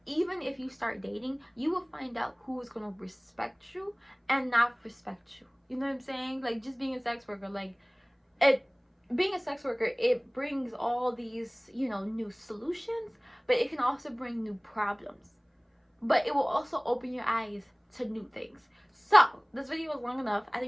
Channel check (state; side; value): identical; both; correlation 1.00